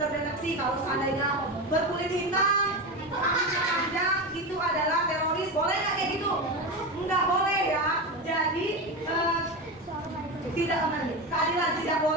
kalau seandainya berkulit hitam, rambutnya panjang, itu adalah teroris. Boleh nggak kayak gitu? nggak boleh ya. Jadi keadilan tidak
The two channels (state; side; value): normal; both; correlation 0.20